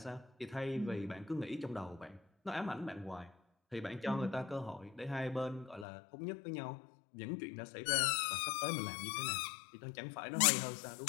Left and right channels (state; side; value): drops out; right; at 5.9 s